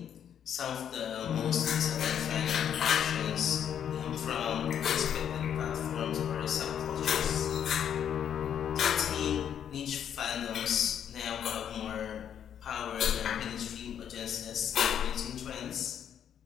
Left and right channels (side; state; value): right; quieter; 9.0 dB